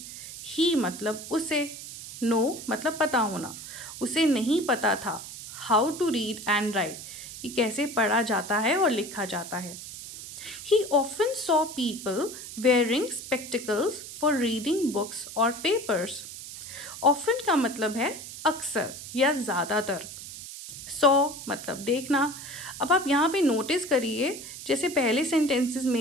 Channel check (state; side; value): noise; right; hiss, 11 dB below the sound